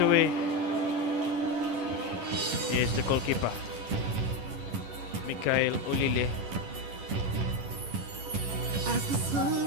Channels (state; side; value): late; left; 10 ms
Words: Yes, the goalkeeper, Mikhail Olile.